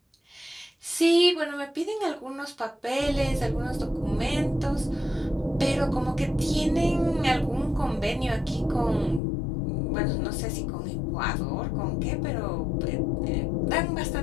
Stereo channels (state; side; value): drops out; right; at 9.2 s